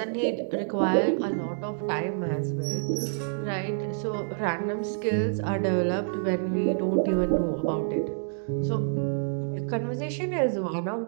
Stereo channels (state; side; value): silent; left; digital silence